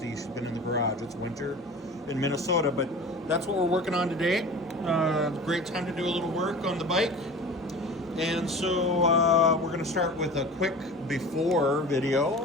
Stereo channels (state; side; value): normal; both; correlation 0.37